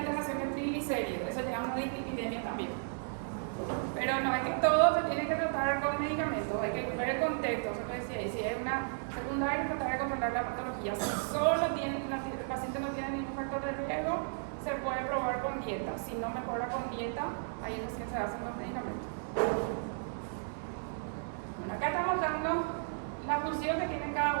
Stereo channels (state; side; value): silent; left; digital silence